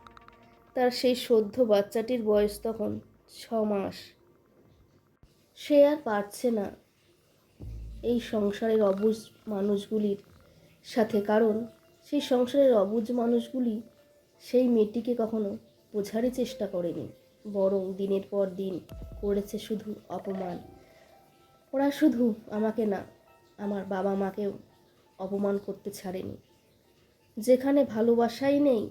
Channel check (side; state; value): both; identical; correlation 1.00